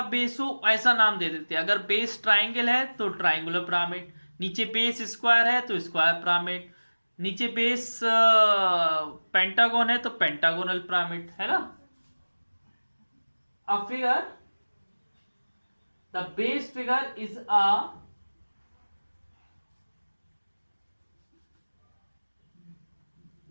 बेस हो ऐसा नाम दे देते हैं। अगर बेस ट्राइंगल है तो ट्राइंगुलर पिरामिड, नीचे बेस स्क्वायर है तो स्क्वायर पिरामिड, नीचे बेस पेंटागन है तो पेंटागोनल पिरामिड, है ना। A figure, the base figure is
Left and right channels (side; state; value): both; inverted; correlation -1.00